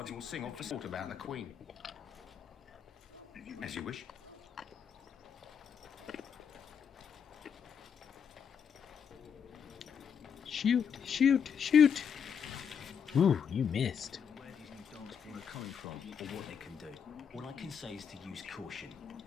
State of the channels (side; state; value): right; quieter; 7.4 dB